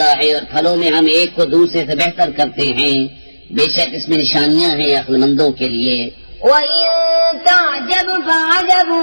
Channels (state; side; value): inverted; both; correlation -1.00